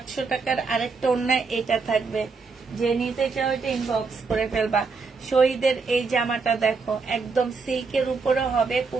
টাকার আরেকটা ওড়না এটা থাকবে। যে নিতে চাও এটা ইনবক্স করে ফেলবা। শহীদের এই জামাটা দেখো, একদম সিল্কের উপরে হবে,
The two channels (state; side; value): quieter; left; 4.6 dB